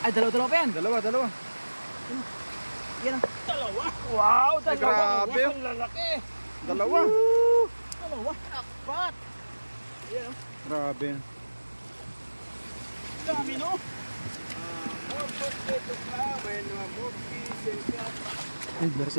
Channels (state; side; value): inverted; both; correlation -1.00